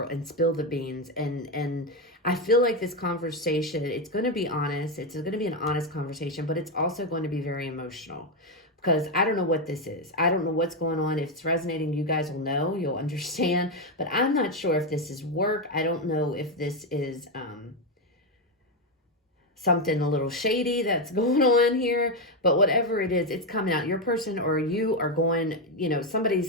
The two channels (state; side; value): normal; both; correlation 0.07